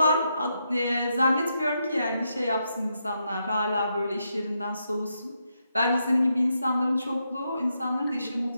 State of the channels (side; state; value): both; inverted; correlation -0.82